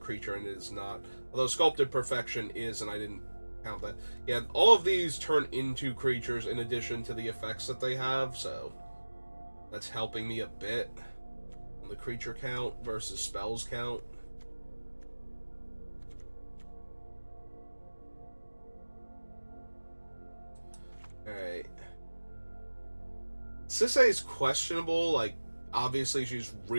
and it is not. Although Sculpted Perfection is, and I didn't count that. Yeah, all of these turn into creatures in addition to the effects that they have, so that's helping me a bit on the creature count versus spells count. Alright. Sisay is questionable, like, obviously she's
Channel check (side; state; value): both; inverted; correlation -1.00